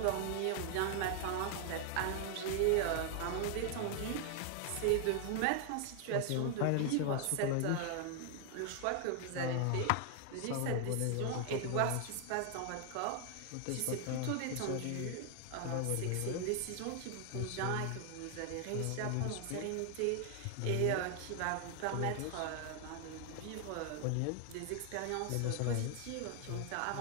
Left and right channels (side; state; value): both; different; correlation 0.00